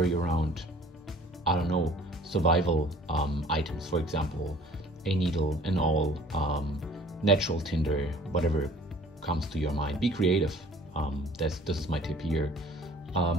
around, I don't know, survival items, for example, a needle, an awl, natural tinder, whatever comes to your mind. Be creative. This is my tip here.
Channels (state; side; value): normal; both; correlation 0.51